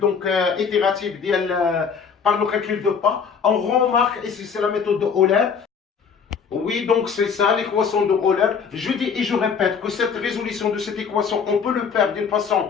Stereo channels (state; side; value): quieter; right; 6.2 dB